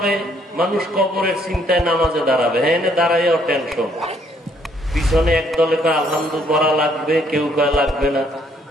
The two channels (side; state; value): both; normal; correlation 0.67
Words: মানুষ, কবরের চিন্তায় নামাজে দাঁড়াবে, হ্যাঁ দাঁড়াইও টেনশন। পিছনে একদলে কয় আলহামদুলিল্লাহ পড়া লাগবে, কেউ কয় লাগবে না।